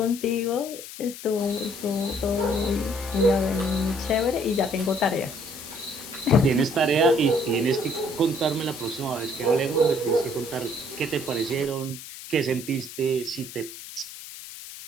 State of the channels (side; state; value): left; noise; hiss, 13 dB below the sound